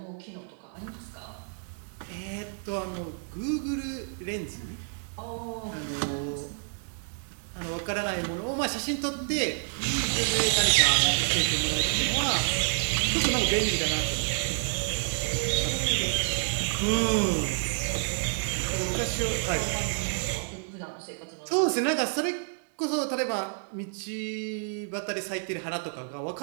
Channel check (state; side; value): silent; left; 59 dB below the other